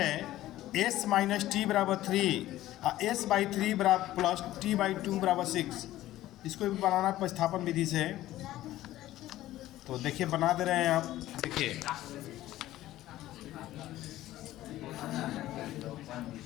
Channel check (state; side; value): quieter; right; 14.9 dB